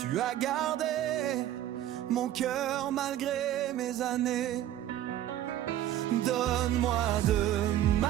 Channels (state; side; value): quieter; left; 12.4 dB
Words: as gardé mon cœur malgré mes années. Donne-moi de